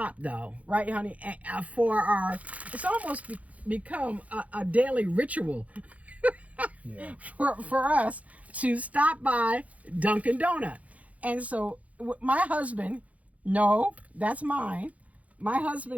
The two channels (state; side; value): late; left; 0.068 ms